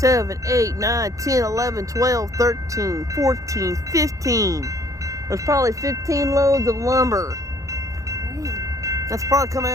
8, 9, 10, 11, 12, 13, 14, 15. There's probably 15 loads of lumber. Dang. That's probably coming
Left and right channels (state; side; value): late; left; 0.16 ms